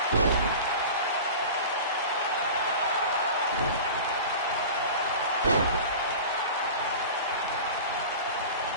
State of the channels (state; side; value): inverted; both; correlation -0.35